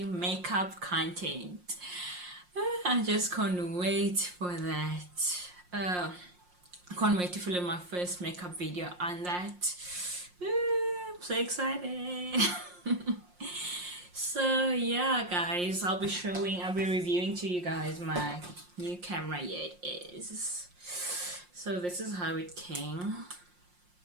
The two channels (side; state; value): left; late; 5.6 ms